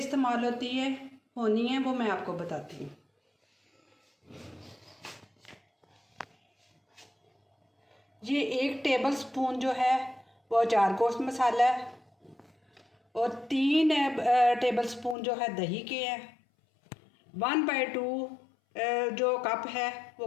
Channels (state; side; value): drops out; right; at 15.2 s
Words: होनी है वो मैं आपको बताती हूँ। ये 1 टेबल स्पून जो है वो अचार गोश्त मसाला है और 3 टेबल स्पून जो है दही के हैं। 1/2 जो कप है वो